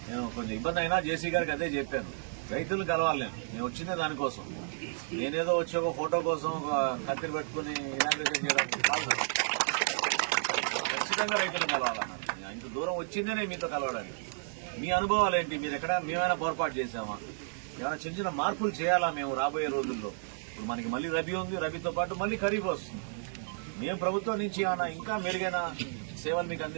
నేను కొంచెం ఇబ్బంది అయినా జేసీ గారికి అదే చెప్పాను, రైతులను కలవాలి నేను వచ్చిందే దానికోసం. నేనేదో వచ్చి ఒక ఫోటో కోసం ఒక కత్తిరి పెట్టుకుని ఇనాగ్రేషన్ చేయడానికి కాదు, ఖచ్చితంగా రైతులను కలవాలన్నారు. ఇంత దూరం వచ్చిందే నేను మీతో కలవడానికి. మీ అనుభవాలు ఏంటి, మీరు ఎక్కడ మేమైనా పొరపాటు చేసామా, ఏమైనా చిన్న చిన్న మార్పులు చేయాలా మేము రాబోయే రోజుల్లో? ఇప్పుడు మనకి మళ్ళీ రబీ ఉంది, రబీతో పాటు మళ్ళీ ఖరీఫ్ వస్తుంది. మేము ప్రభుత్వం నుంచి ఏమైనా ఇంకా మెరుగైన సేవలు మీకు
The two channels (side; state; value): left; silent; digital silence